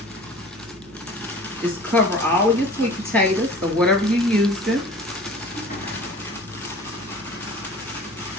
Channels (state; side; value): normal; both; correlation 0.43